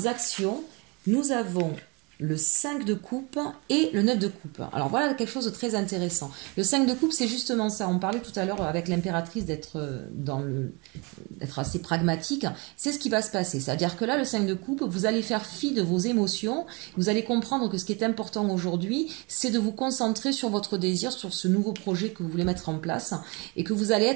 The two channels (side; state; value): left; quieter; 28.7 dB